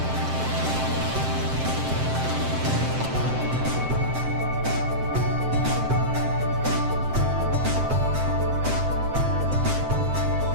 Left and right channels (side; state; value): left; late; 7.7 ms